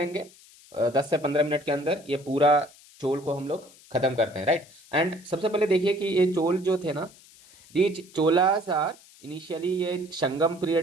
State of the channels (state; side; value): noise; left; hiss, 24 dB below the sound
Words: 10 से 15 मिनट के अंदर ये पूरा चोल को हम लोग खत्म करते हैं, राइट। एंड सबसे पहले देखिए कि ये चोल जो थे ना, दीज चोलास आर इनिशियली ये संगम